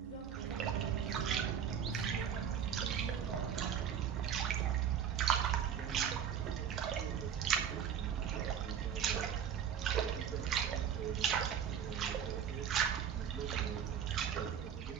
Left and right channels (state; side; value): quieter; left; 8.4 dB